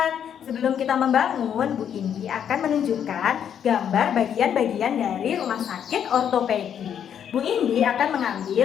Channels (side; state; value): right; quieter; 8.8 dB